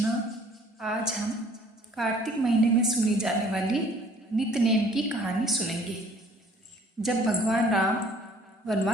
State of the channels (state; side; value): normal; both; correlation 0.55